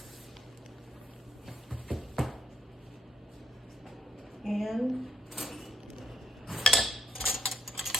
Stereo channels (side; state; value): both; normal; correlation 0.73